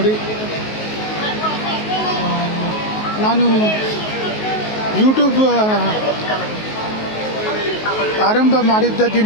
ನಾನು ಯೂಟ್ಯೂಬ್ ಆರಂಭ ಮಾಡಿದ್ದ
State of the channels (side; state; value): right; late; 19 ms